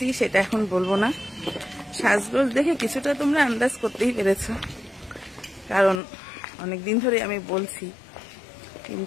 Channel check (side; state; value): right; drops out; at 6.0 s